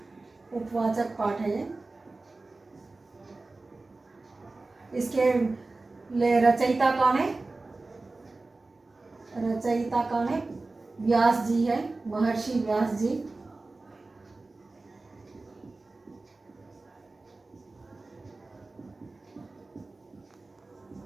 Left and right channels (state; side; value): quieter; left; 3.4 dB